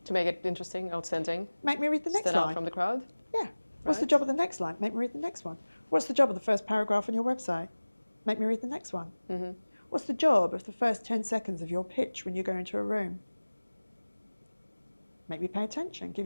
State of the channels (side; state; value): both; inverted; correlation -1.00